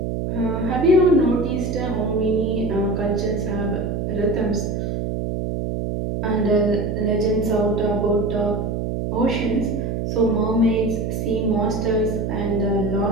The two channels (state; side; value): noise; right; hum, 2 dB below the sound